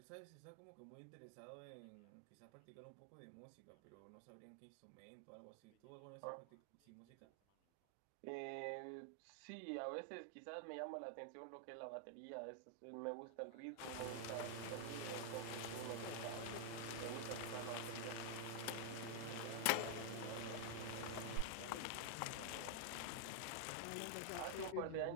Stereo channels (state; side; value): different; both; correlation 0.00